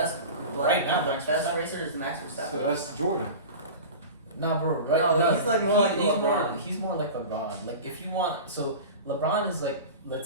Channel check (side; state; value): both; inverted; correlation -0.32